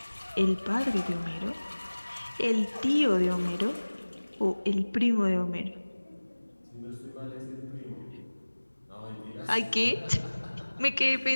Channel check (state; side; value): inverted; both; correlation -1.00